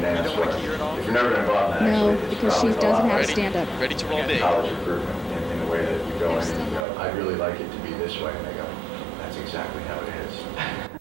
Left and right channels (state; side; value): drops out; left; at 6.9 s